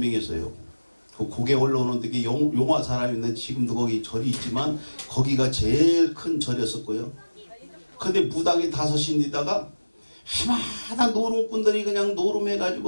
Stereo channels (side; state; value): both; inverted; correlation -1.00